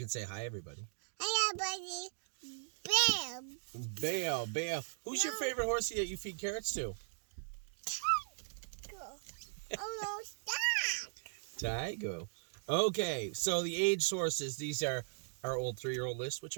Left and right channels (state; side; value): silent; left; digital silence